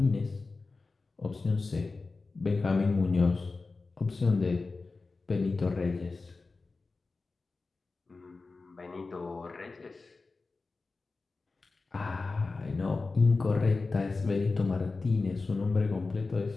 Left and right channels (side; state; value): right; quieter; 3.8 dB